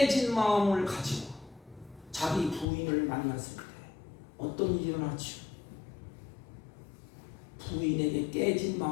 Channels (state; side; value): drops out; right; at 2.7 s